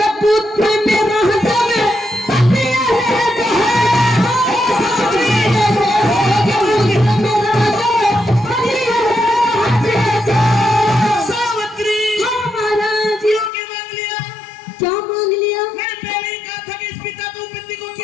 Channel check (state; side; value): drops out; right; at 13.5 s